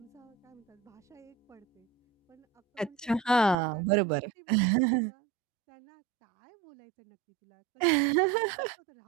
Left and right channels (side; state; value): left; drops out; at 3.6 s